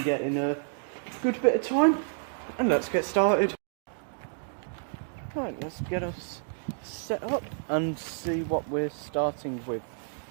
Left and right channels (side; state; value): left; silent; digital silence